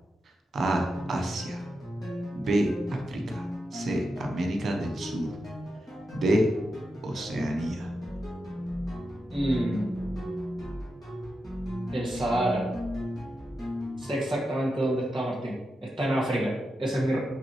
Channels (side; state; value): both; normal; correlation 0.88